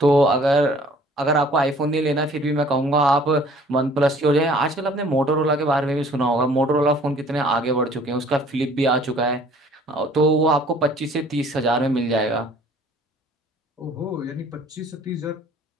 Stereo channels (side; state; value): both; normal; correlation 0.54